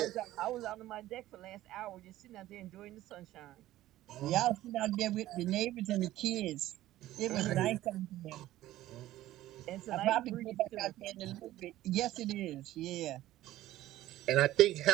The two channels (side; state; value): left; quieter; 14.9 dB